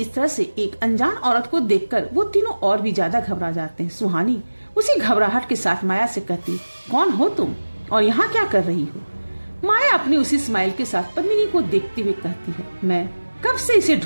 तरह से एक अनजान औरत को देखकर वो तीनों और भी ज्यादा घबरा जाते हैं। सुहानी उसी घबराहट के साथ माया से कहती, कौन हो तुम और यहाँ क्या कर रही हो? माया अपनी उसी स्माइल के साथ पद्मिनी को देखते हुए कहती है, मैं कब से इसे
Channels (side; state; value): both; inverted; correlation -1.00